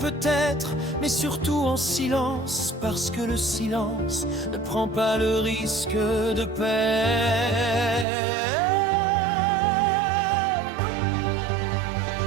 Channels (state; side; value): drops out; left; at 8.1 s